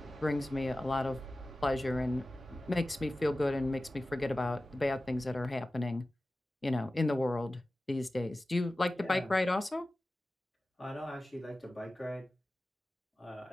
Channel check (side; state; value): both; normal; correlation 0.96